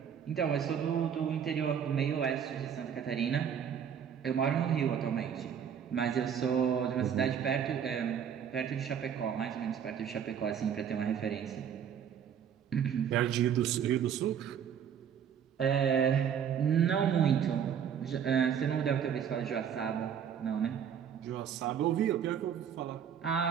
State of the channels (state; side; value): quieter; left; 8.2 dB